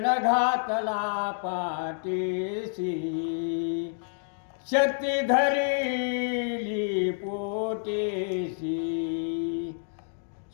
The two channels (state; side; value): silent; right; digital silence